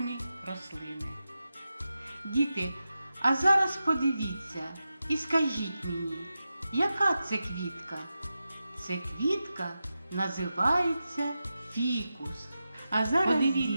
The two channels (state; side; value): inverted; both; correlation -0.91